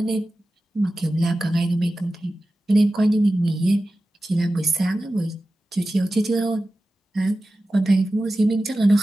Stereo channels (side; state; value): both; normal; correlation 0.94